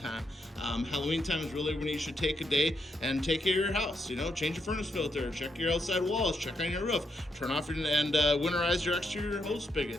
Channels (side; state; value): both; normal; correlation 0.79